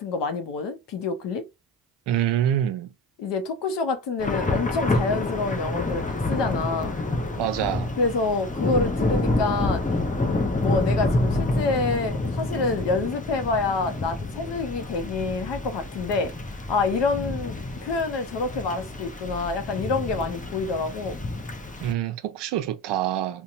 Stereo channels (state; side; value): normal; both; correlation 0.35